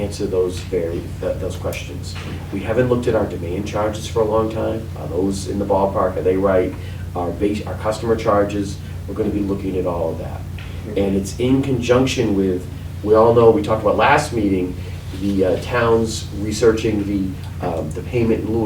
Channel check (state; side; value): identical; both; correlation 1.00